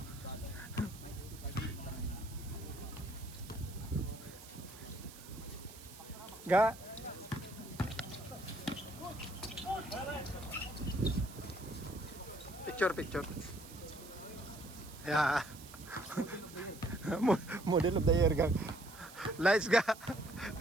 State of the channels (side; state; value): right; noise; hiss, 17 dB below the sound